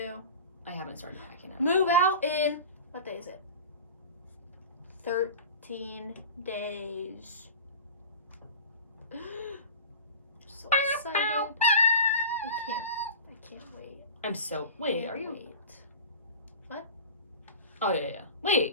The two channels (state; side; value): inverted; both; correlation -0.35